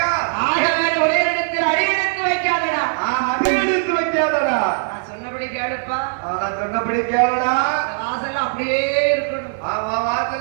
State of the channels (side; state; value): left; silent; 56 dB below the other